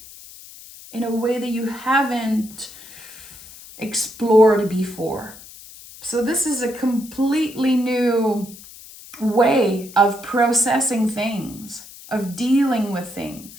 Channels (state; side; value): noise; left; hiss, 18 dB below the sound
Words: in a way that you haven't explored before. So this is a completely new way of processing things, of dealing with